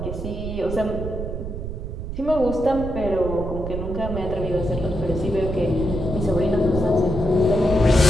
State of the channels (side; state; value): right; noise; rumble, 6 dB below the sound